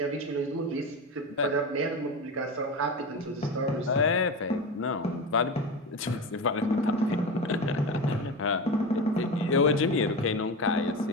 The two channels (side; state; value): both; normal; correlation 0.23